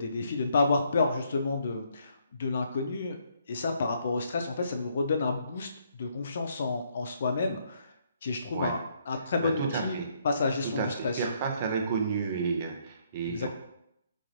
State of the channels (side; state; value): both; inverted; correlation -0.70